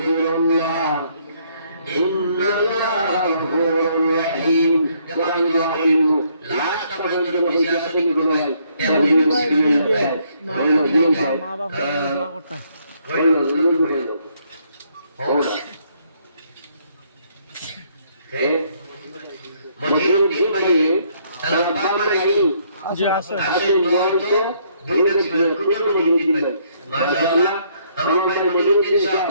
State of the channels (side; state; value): both; inverted; correlation -0.68